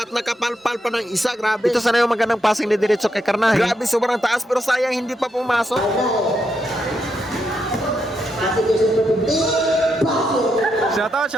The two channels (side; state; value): both; normal; correlation 0.81